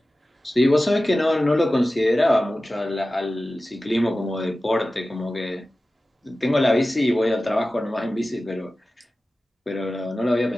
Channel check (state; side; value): normal; both; correlation 0.95